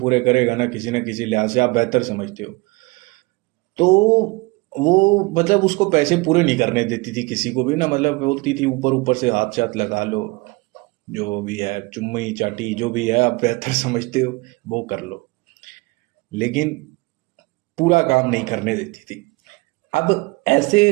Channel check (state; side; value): quieter; left; 24.9 dB